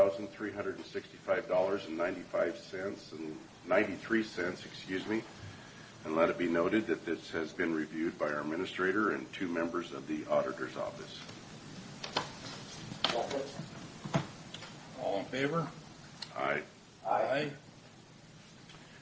and let it be noted that this has been reviewed by our administrator and 2 members of the auditor's office. All in favor? Aye. Aye.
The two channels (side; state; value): both; identical; correlation 1.00